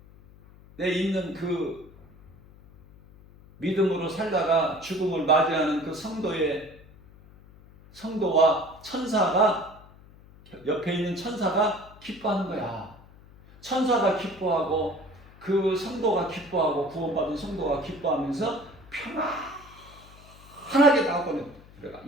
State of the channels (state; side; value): noise; left; hum, 23 dB below the sound